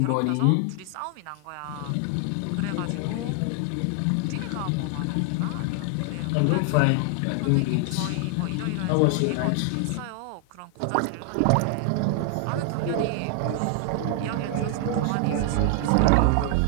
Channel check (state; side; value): different; both; correlation 0.00